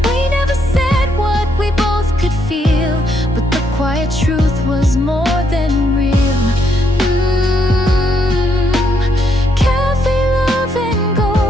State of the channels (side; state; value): both; normal; correlation 0.75